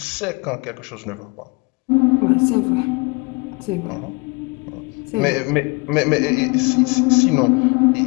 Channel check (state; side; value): quieter; right; 28.9 dB